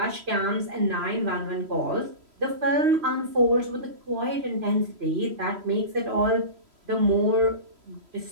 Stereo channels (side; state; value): left; late; 3.0 ms